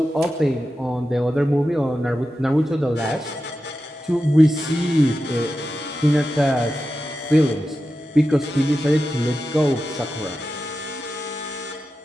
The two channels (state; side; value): normal; both; correlation 0.91